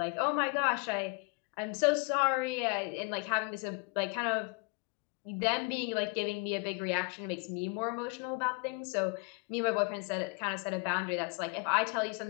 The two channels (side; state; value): right; quieter; 30.8 dB